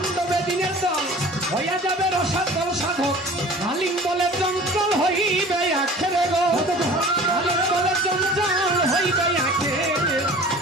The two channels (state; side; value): normal; both; correlation 0.43